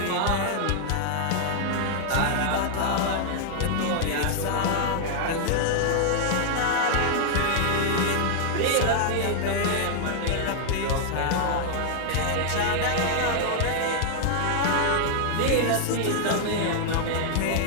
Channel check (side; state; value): both; different; correlation -0.01